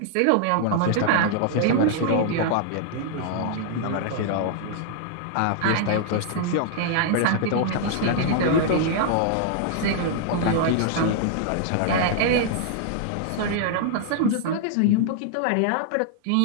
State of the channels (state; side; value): different; both; correlation -0.01